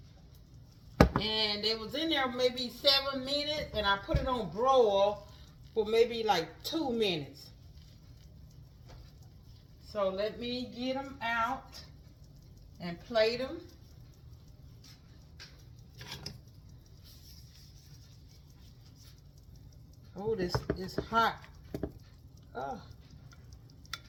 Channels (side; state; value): both; identical; correlation 1.00